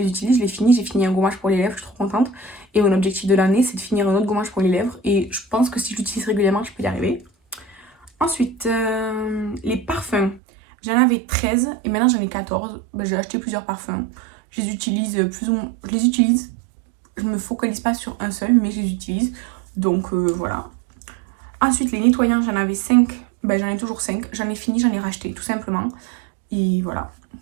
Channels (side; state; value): left; drops out; at 10.4 s